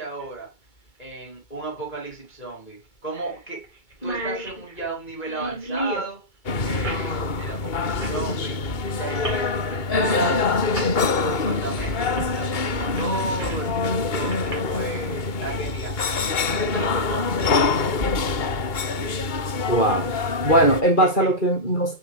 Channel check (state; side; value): late; right; 2.2 ms